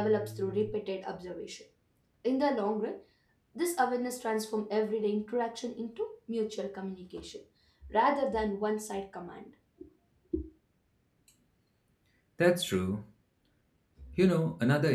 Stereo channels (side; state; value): both; identical; correlation 1.00